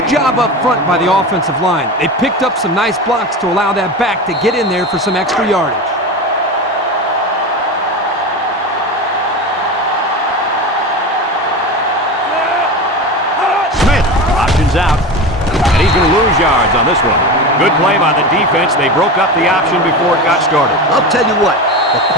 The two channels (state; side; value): normal; both; correlation 0.26